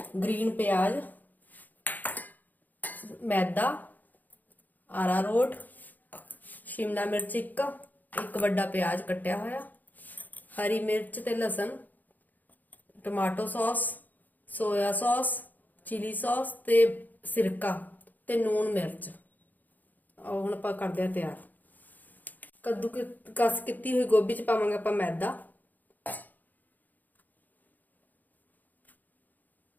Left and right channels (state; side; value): late; right; 0.083 ms